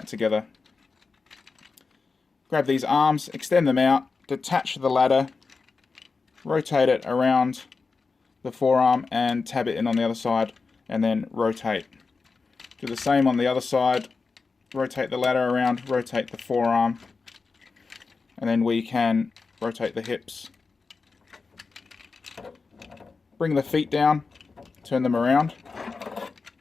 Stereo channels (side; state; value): right; quieter; 4.5 dB